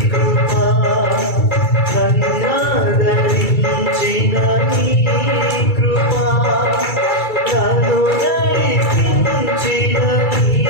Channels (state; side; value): late; right; 2.3 ms